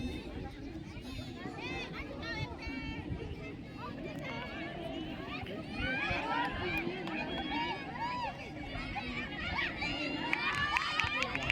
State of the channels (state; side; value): identical; both; correlation 1.00